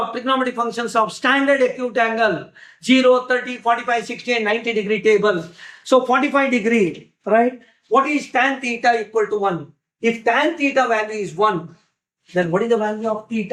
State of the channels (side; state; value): both; identical; correlation 1.00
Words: trigonometric functions of standard acute angle 0, 30, 45, 60 and 90 degree table. So 45 degree, right? What is tan theta equal to 1? If tan theta value is 1, then what is the value of